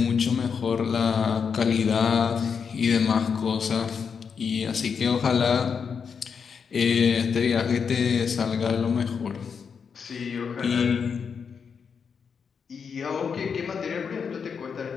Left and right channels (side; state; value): right; quieter; 6.3 dB